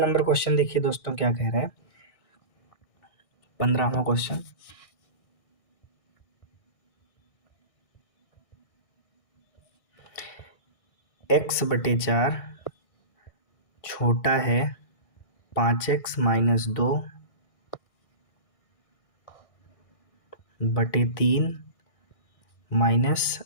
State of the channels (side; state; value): right; late; 1.6 ms